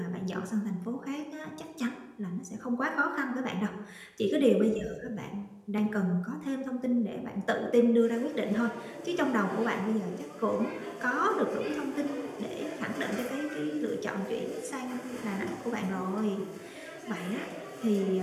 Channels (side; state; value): both; identical; correlation 1.00